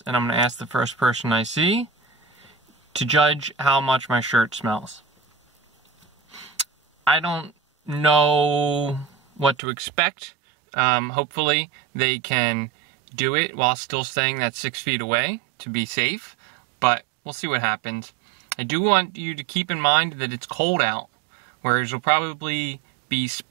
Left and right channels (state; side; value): drops out; left; at 9.6 s